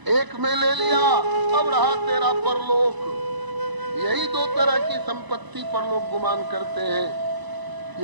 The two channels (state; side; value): late; left; 1.0 ms